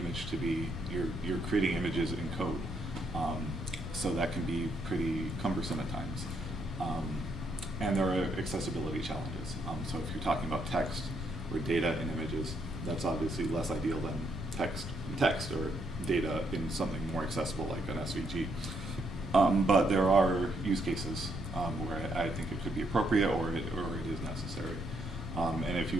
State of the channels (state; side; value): normal; both; correlation 0.75